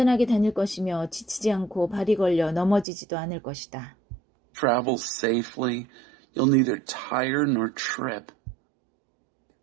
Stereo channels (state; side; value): drops out; left; at 2.9 s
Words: 다닐 것이며 지치지 않고 발이 걸려 넘어지지도 않을 것이다. travel safely. You'll neither tire nor trip.